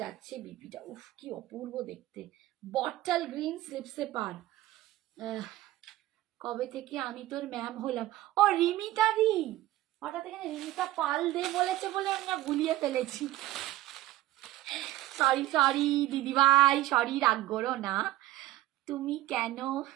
যাচ্ছে বিপিটা, উফ কি অপূর্ব দেখতে। বটল গ্রিন স্লিপসে পার। কবে থেকে আমি তোর ম্যাম হলাম। ও রিমিতা দি, হঠাৎ এখানে রিমিতা পাল দে বলেছে বলে আমি না ভুলিয়ে ফেলেছি। সরি সরি দিদিভাই, সরি, রাগ করো না। তুমি কেন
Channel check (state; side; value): quieter; left; 15.9 dB